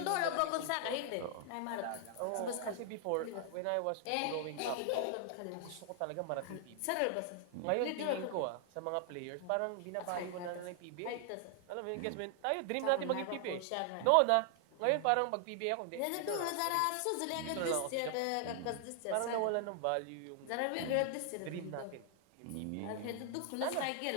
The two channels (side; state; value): both; different; correlation 0.00